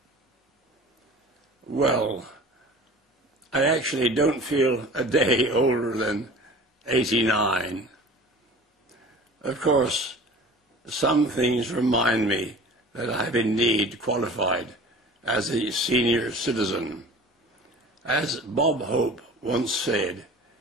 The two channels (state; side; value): normal; both; correlation 0.42